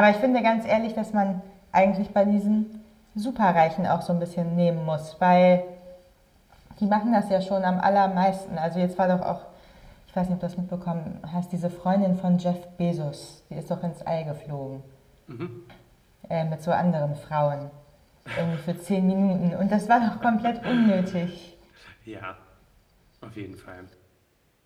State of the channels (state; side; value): identical; both; correlation 1.00